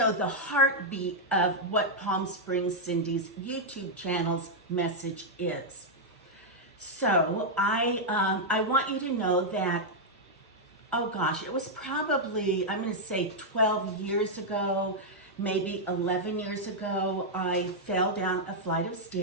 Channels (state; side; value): normal; both; correlation -0.04